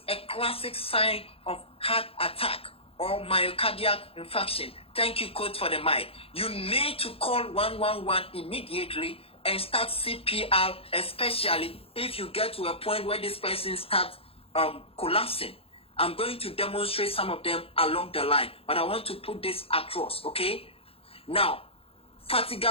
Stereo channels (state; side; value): late; right; 0.27 ms